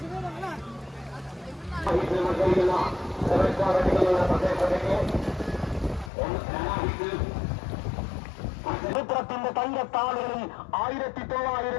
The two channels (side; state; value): right; drops out; at 6.1 s